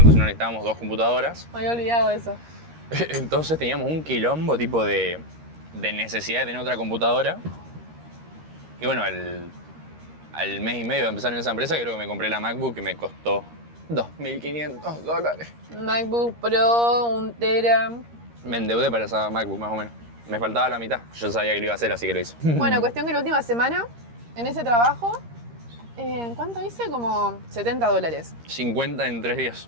entonces no necesitábamos 2 computadoras. Me había olvidado eso. Entonces teníamos un quilombo tipo de necesidad de tener otra computadora. Y bueno, al mes y medio de empezar en esa empresa, creo que me compré la MacBook y me costó $2.500. MacBook Pro, 1 tera. Me endeudé para esa MacBook más o menos. Me faltaba la mitad. Yo sabía que lo iba a hacer, así que lo hice. Bueno, cuestión que la última semana, en ese trabajo, ¿cuánto hice? Como $70. 50 en 3 días.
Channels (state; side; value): late; left; 13 ms